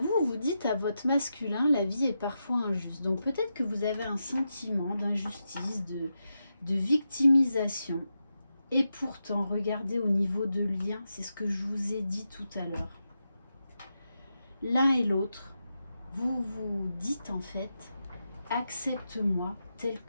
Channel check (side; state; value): both; inverted; correlation -0.88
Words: vous dites à votre masculin, la vie est parfois injuste. Donc peut-être que vous avez un sentiment d'injustice, de victimisation. Et pourtant, regardez au niveau de lien, c'est ce que je vous ai dit tout à l'heure. L'un et l'autre, vous vous dites en fait, accepte-moi tel